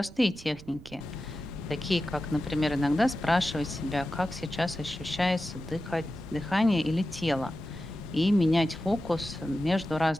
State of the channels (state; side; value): noise; right; rumble, 18 dB below the sound